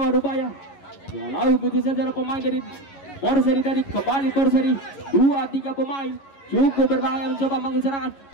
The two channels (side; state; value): right; late; 11 ms